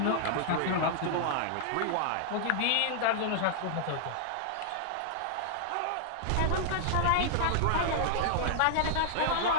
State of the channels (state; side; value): different; both; correlation -0.01